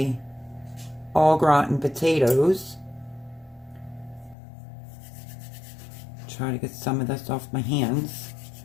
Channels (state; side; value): drops out; right; at 4.4 s